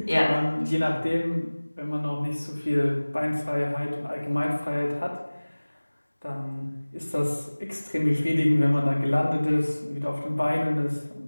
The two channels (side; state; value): both; inverted; correlation -1.00